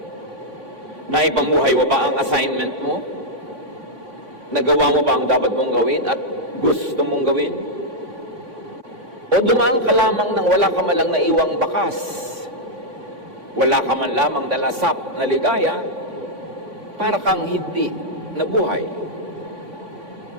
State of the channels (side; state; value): left; late; 3.5 ms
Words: Naipamuhay mo ba ang assignment mo? Nagawa mo ba ang dapat mong gawin at gusto mong gawin? O dumaan ka lamang nang wala ka man lang naiwang bakas? Wala ka man lamang dalasap na ligaya para kang hindi nabuhay?